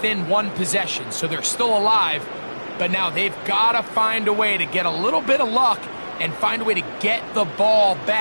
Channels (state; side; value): inverted; both; correlation -1.00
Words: 1 possession. So they're still alive, but now they've got to find a way to get a little bit of luck and find a way to get the ball